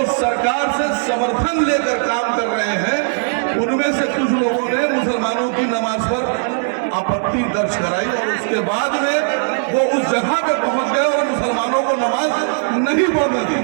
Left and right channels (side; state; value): left; silent; digital silence